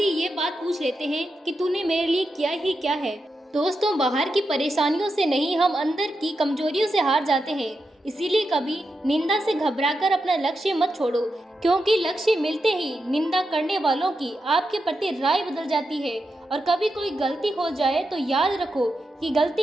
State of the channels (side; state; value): both; normal; correlation 0.87